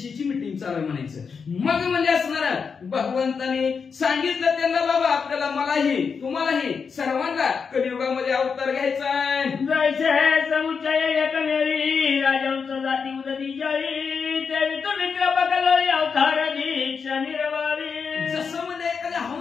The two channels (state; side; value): quieter; right; 5.8 dB